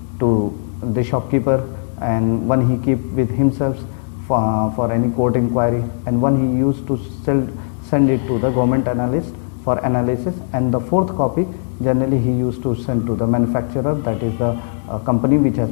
to the shopkeeper, and one he keep with himself for any court inquiry, and one he used to send it to the government analyst for analysis, and the 4th copy generally he used to send to the manufacturer, that is the company which has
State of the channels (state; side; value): silent; right; digital silence